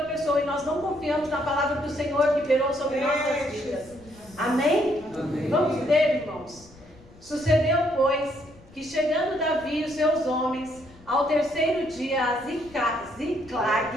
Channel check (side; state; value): left; noise; rumble, 24 dB below the sound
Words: pessoa e nós não confiamos na palavra do Senhor que liberou sobre nossas vidas. Amém? Amém. Vamos ler, irmãos. Sucedeu, pois, que chegando Davi e os seus homens ao terceiro dia a